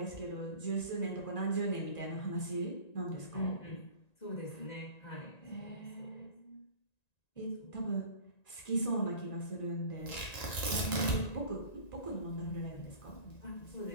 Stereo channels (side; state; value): right; late; 1.9 ms